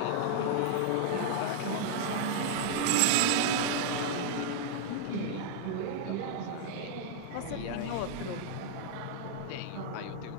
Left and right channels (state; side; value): different; both; correlation -0.01